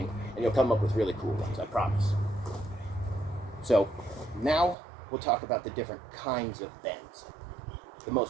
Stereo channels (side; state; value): left; drops out; at 4.8 s